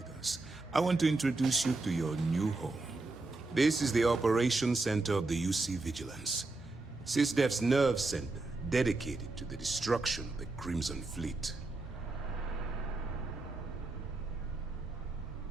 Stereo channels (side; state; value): left; quieter; 3.3 dB